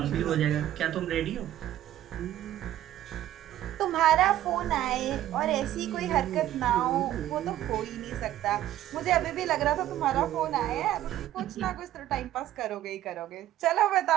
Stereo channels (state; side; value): quieter; left; 13.2 dB